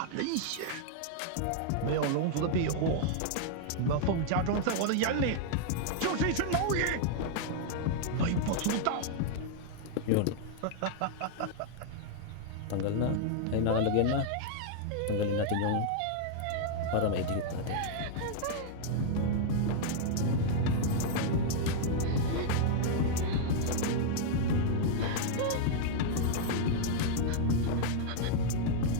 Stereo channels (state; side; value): different; both; correlation -0.01